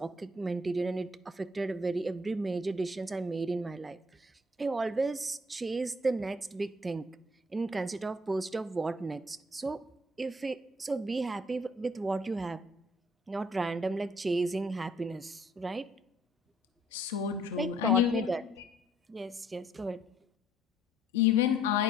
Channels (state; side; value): normal; both; correlation 0.62